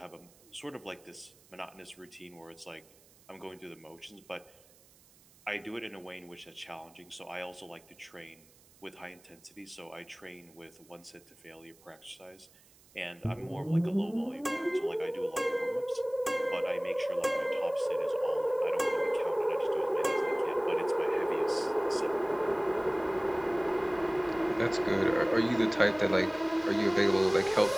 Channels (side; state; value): right; noise; hiss, 27 dB below the sound